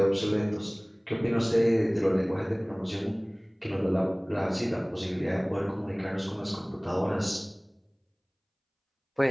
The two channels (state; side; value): identical; both; correlation 1.00